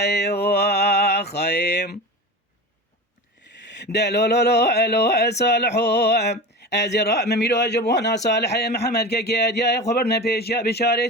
خيم دلو صالحو أزراء مميلو أجبونا صالح محمد كي أديا خبرنا بيش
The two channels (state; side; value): normal; both; correlation 0.29